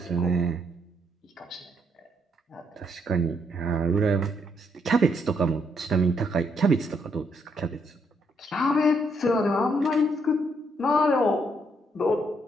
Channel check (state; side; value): normal; both; correlation 0.73